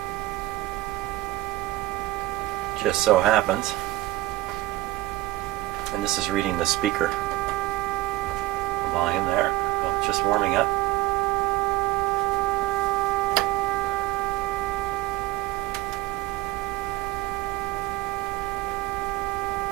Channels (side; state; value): left; quieter; 17.5 dB